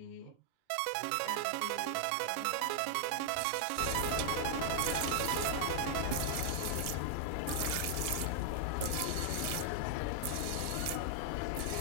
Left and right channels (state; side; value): different; both; correlation 0.00